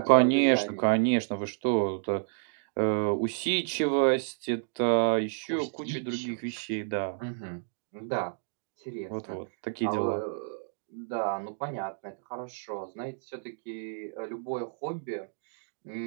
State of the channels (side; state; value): left; silent; digital silence